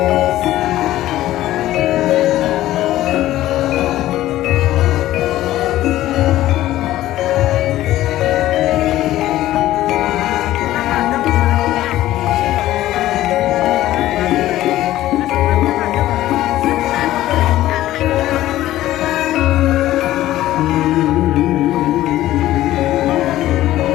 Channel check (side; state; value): right; quieter; 14.7 dB